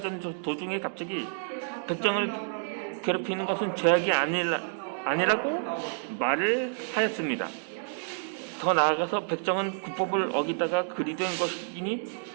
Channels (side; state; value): left; silent; digital silence